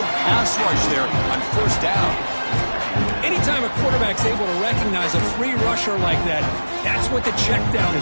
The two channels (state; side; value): inverted; both; correlation -1.00